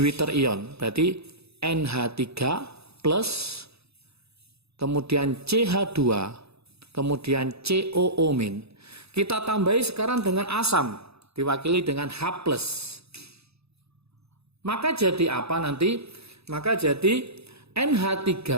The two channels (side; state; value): left; late; 0.79 ms